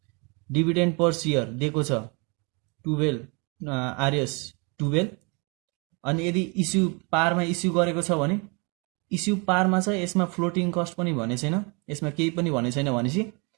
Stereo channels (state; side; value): quieter; left; 31.7 dB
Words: Dividend per share दिएको छ 12 आरएस 12। अनि यदि इस्यु पारमा इस्यु गरेको छ भने इस्यु पारमा छ, यसमा फ्लोटिङ कस्ट पनि भने छैन, यसमा केही पनि भने छैन भनेपछि